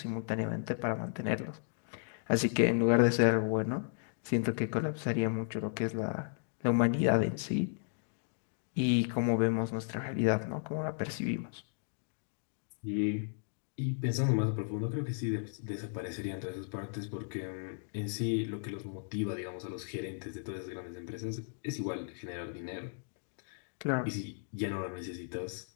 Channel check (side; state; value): right; silent; digital silence